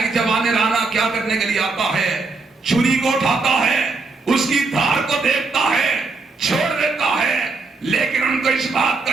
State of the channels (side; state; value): left; quieter; 3.9 dB